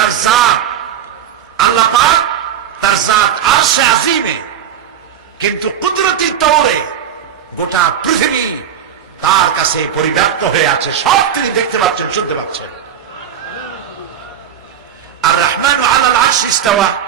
জাত, আল্লাহ পাক তার জাত আরশে আজিমে, কিন্তু কুদরতি তৌরে গোটা পৃথিবী তার কাছে পরিব্যাপ্ত হয়ে আছে, সব তিনি দেখতে পাচ্ছেন, শুনতে পাচ্ছেন। আর রহমান আলাল আরশ ইস্তাওয়া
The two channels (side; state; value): left; quieter; 9.2 dB